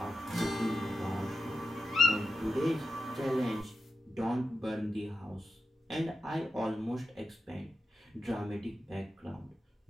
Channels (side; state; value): both; normal; correlation 0.90